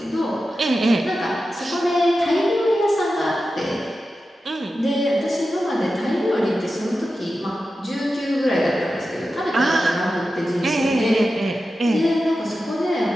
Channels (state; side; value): normal; both; correlation 0.92